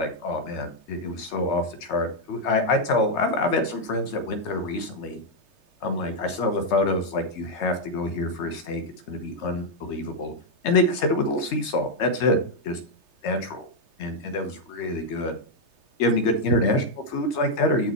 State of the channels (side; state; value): right; late; 3.3 ms